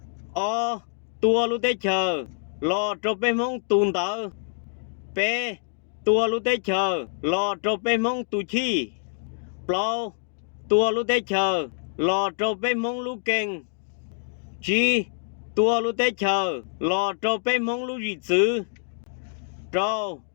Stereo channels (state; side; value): silent; right; digital silence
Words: tua lũ tế chờ lò trò bê mong tùn tờ bê tua lũ tế chờ lò trò bê mong tù chi plau tua lũ tế chờ lò trò bê mong lũ kênh chi tua lũ tế chờ lò trò bê mong lũ dị chữ trâu